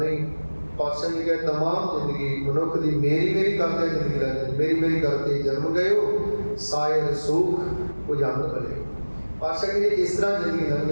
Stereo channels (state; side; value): inverted; both; correlation -1.00